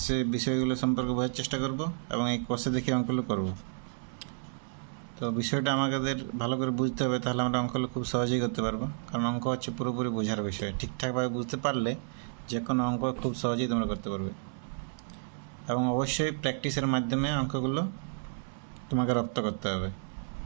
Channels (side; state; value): left; silent; digital silence